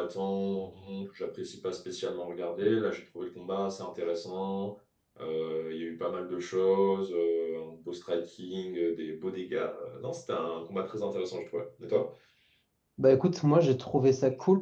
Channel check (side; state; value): both; identical; correlation 1.00